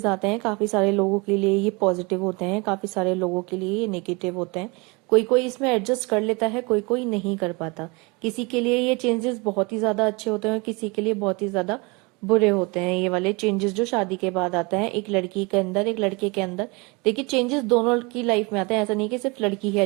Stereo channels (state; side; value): quieter; left; 27.7 dB